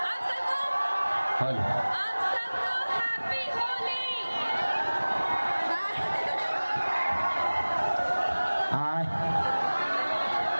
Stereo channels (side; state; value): both; inverted; correlation -1.00